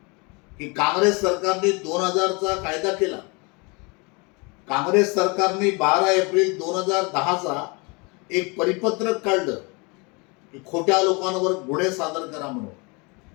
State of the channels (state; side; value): quieter; right; 29.2 dB